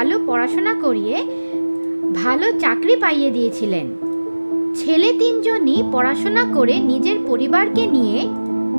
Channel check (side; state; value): both; inverted; correlation -1.00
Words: পড়াশোনা করিয়ে ভালো চাকরি পাইয়ে দিয়েছিলেন। ছেলে 3 জনই পড়াশোনা করে নিজের পরিবারকে নিয়ে